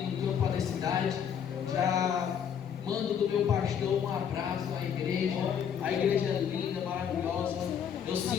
campo da cidade. Já mando do meu pastor um abraço à igreja. A igreja é linda, maravilhosa. Eu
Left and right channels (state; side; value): quieter; right; 8.1 dB